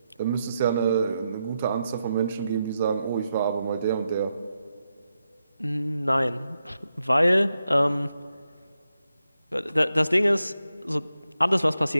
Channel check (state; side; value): inverted; both; correlation -0.86